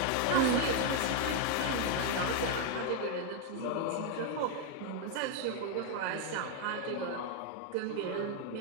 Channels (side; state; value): both; different; correlation 0.01